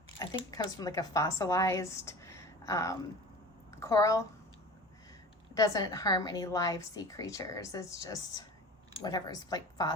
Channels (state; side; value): normal; both; correlation 0.38